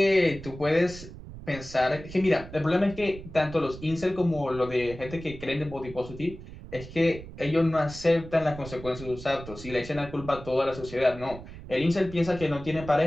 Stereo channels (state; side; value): noise; right; rumble, 14 dB below the sound